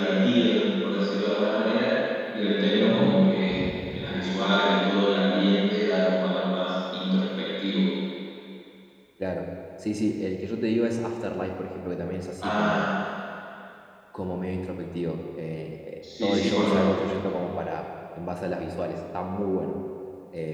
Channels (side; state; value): both; identical; correlation 1.00